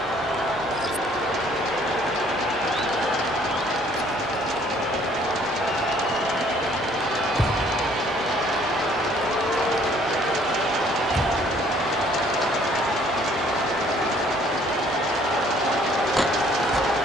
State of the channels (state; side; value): normal; both; correlation 0.60